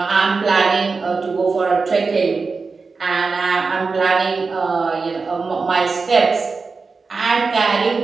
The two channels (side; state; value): left; quieter; 4.4 dB